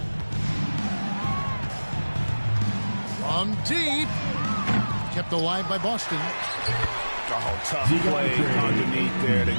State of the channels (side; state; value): both; inverted; correlation -1.00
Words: From deep. Kept alive by Boston. Oh, tough play underneath there to